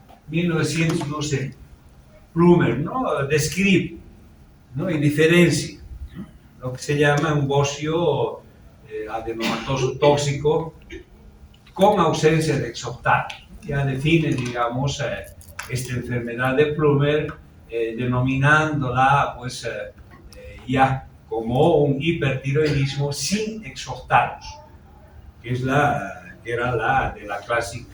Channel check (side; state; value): both; identical; correlation 1.00